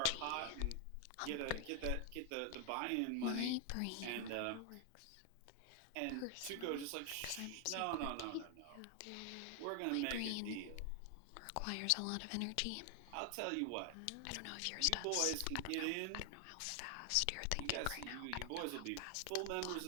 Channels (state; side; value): different; both; correlation 0.00